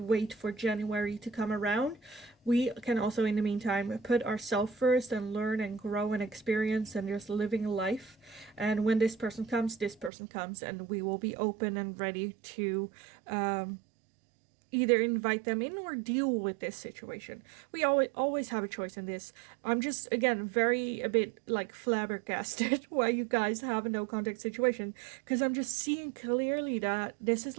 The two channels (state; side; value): drops out; left; at 10.1 s